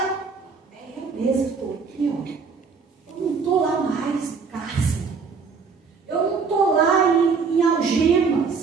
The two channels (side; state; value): left; quieter; 5.2 dB